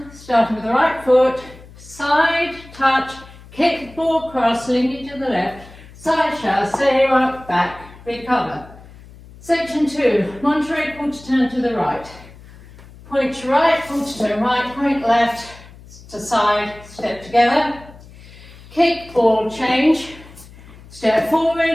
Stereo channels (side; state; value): left; noise; hum, 20 dB below the sound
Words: starting with the right foot, side, touch, kick, ball, cross, linking to the left, side chassé, rock, back, recover. Section 2, Monterey quarter turn to the right. Point to right, quarter turn right, point left, to side, step together. Kick, ball, change. Step